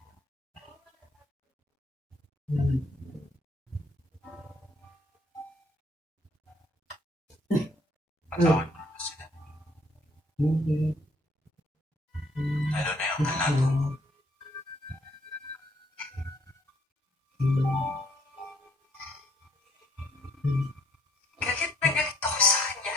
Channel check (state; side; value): normal; both; correlation 0.65